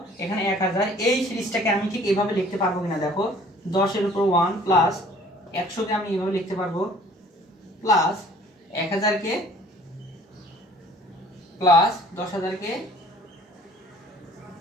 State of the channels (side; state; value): both; normal; correlation 0.53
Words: এখানে 1000, এই সিরিজটাকে আমি ঠিক এইভাবে লিখতে পারবো কিনা দেখো, 10 এর উপর 1 প্লাস 100 কে আমি এইভাবে লিখতে পারবো, প্লাস 1000 কে প্লাস 10000 কে,